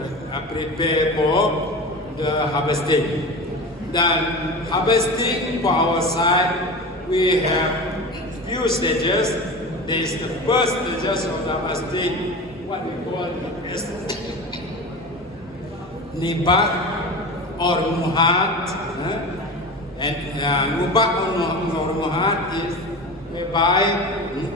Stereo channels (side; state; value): both; normal; correlation 0.30